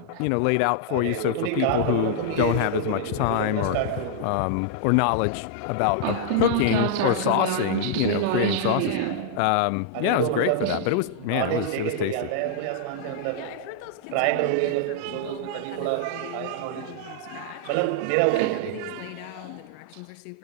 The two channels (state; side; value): different; both; correlation -0.01